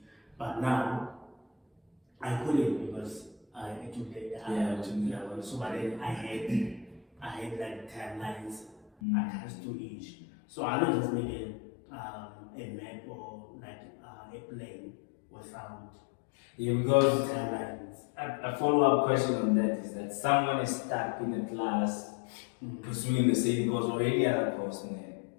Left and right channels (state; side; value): drops out; right; at 8.9 s